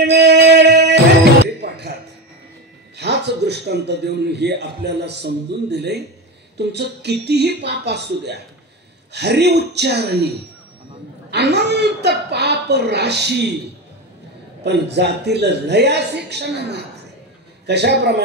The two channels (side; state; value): both; normal; correlation 0.21